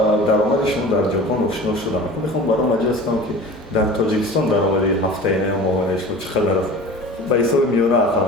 درآمد شما در ژاپن آشنا شدم. میخوام برام مجلس کنم که در تاجیکستان درآمد هفته‌ای ماهانه شما چقدر است؟ با حساب میانه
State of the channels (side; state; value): both; normal; correlation 0.38